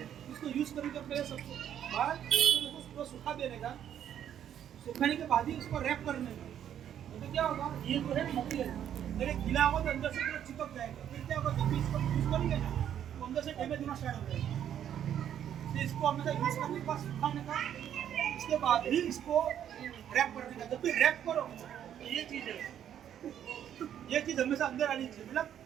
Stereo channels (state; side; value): quieter; left; 9.9 dB